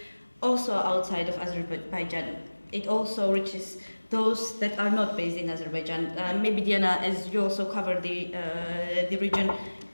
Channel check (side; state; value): both; inverted; correlation -1.00